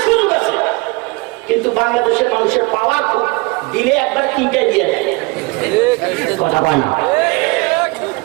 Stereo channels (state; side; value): quieter; left; 25.9 dB